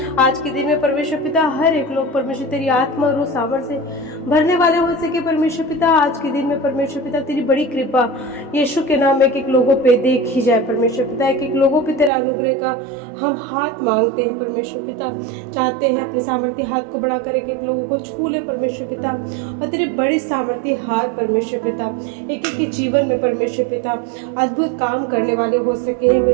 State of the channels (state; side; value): drops out; left; at 12.1 s